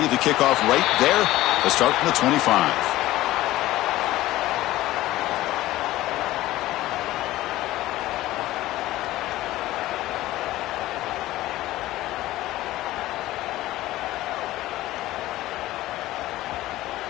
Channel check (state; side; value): quieter; right; 16.3 dB